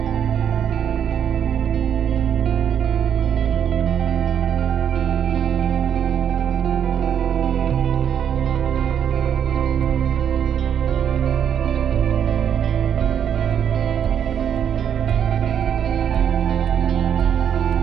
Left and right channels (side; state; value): left; quieter; 8.7 dB